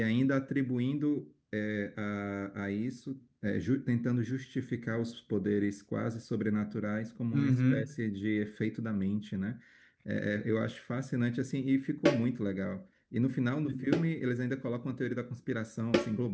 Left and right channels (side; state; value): both; identical; correlation 1.00